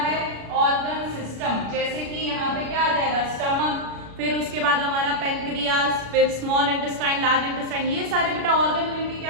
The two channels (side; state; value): left; late; 36 ms